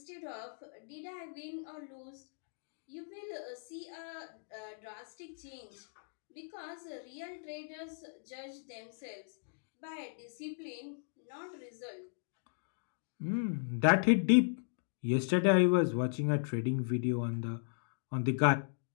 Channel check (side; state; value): right; silent; digital silence